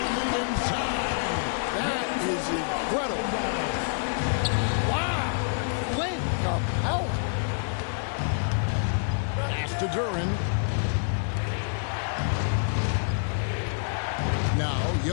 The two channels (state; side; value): silent; right; digital silence